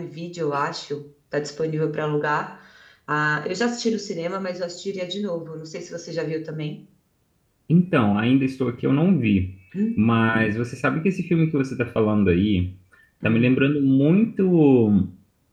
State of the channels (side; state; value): both; identical; correlation 1.00